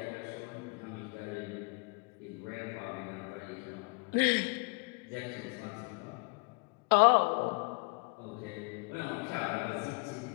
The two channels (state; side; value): quieter; right; 31.2 dB